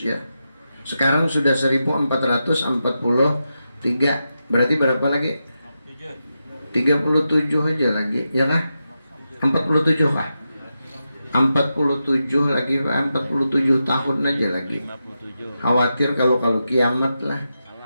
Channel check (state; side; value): inverted; both; correlation -0.88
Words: Sekarang sudah 1.443. Berarti berapa lagi? 37 aja lagi, ya kah? 47 kah? 47 lagi, 47 tahun aja lagi. Khawatir kalau kiamat lah.